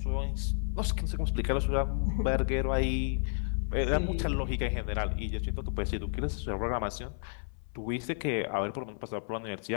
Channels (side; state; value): right; silent; 57 dB below the other